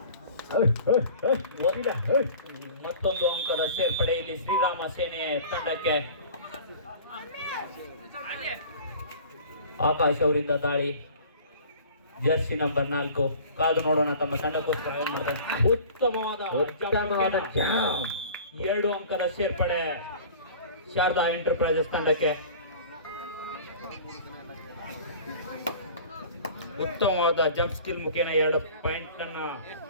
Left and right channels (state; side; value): inverted; both; correlation -0.43